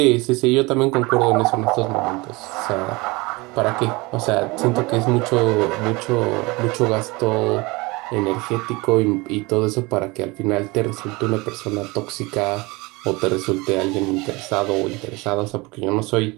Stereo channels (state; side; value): quieter; left; 24.4 dB